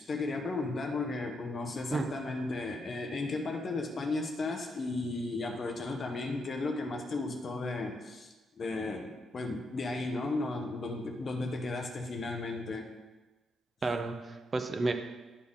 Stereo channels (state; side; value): normal; both; correlation 0.80